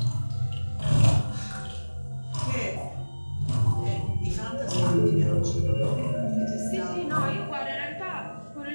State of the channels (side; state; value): both; inverted; correlation -1.00